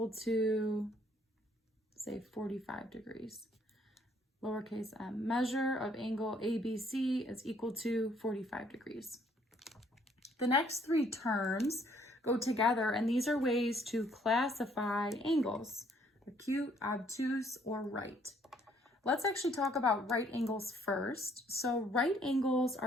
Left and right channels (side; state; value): both; normal; correlation 0.65